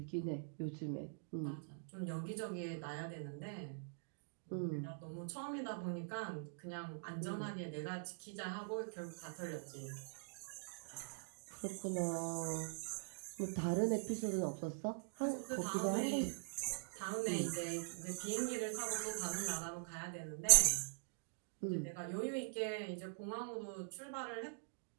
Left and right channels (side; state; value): left; silent; digital silence